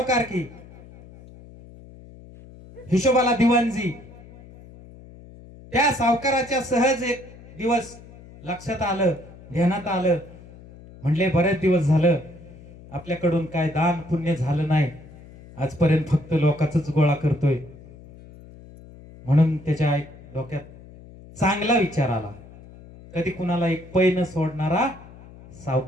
हिशोबाला दिवाणजी. त्या सावकाराच्या सहज एक दिवस लक्षात आलं, ध्यानात आलं, म्हणले बरेच दिवस झालं आपल्याकडून काय दान पुण्य झालं नाही, आजपर्यंत फक्त लोकांचाच गोळा करतोय. म्हणून त्याच्या एक डोक्यात चांगला विचार आला, कधी कुणाला एक पै न सोडणारा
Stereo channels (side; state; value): left; noise; hum, 20 dB below the sound